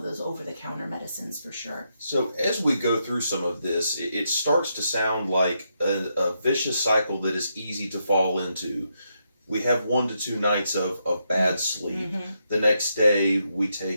those over-the-counter medicines for sure. So as we go through some of this, it starts to sound like a vicious cycle that is easy to fall into. We have 1 to 2 nights of bad sleep. The next day, we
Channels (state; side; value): inverted; both; correlation -0.81